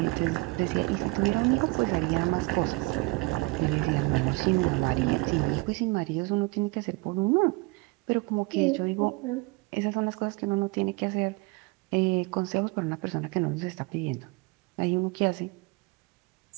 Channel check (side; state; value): left; quieter; 25.4 dB